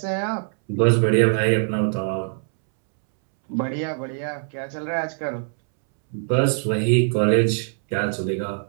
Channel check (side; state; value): left; silent; 64 dB below the other